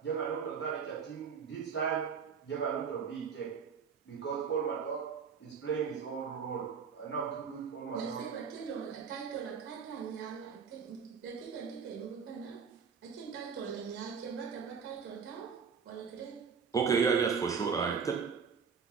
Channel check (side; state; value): left; quieter; 6.2 dB